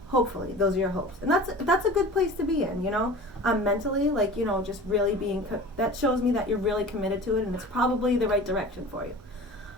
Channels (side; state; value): both; normal; correlation 0.38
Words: Hopefully, those are your hopes, and that's a good place to be in, you know. Mentally, like, you know, just really being that shows me that you're really committed to it, and it's probably the right direction for you.